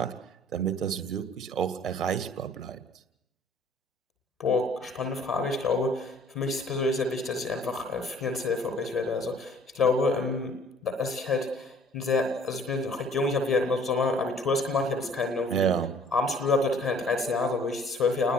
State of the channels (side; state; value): both; normal; correlation 0.55